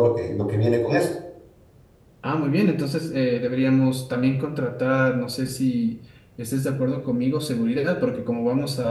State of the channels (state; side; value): identical; both; correlation 1.00